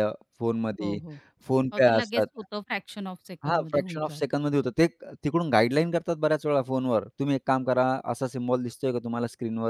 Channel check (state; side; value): identical; both; correlation 1.00